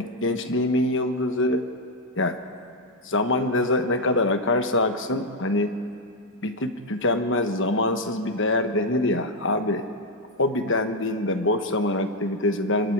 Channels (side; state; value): both; normal; correlation 0.02